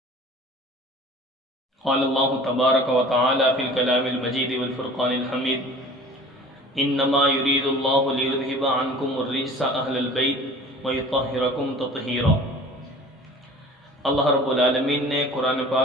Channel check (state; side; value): normal; both; correlation 0.44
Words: قال اللہ تبارک و تعالی فی الکلام المجید والفرقان الحمید انما یرید اللہ لیذہب عنکم الرجس اہل البیت ویطہرکم تطہیرا۔ اللہ رب العالمین نے قرآن